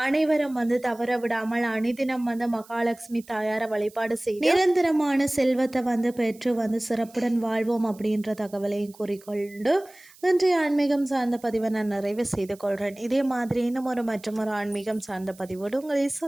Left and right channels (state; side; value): noise; right; hiss, 25 dB below the sound